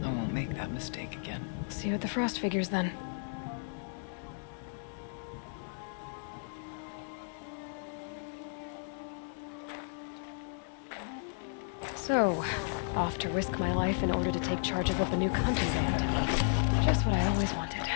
I won't make that mistake again. See you at the Frost Figures then. So, off to risk my life in order to take charge of a Banuk hunting band. Just what I always wanted.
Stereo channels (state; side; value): silent; right; digital silence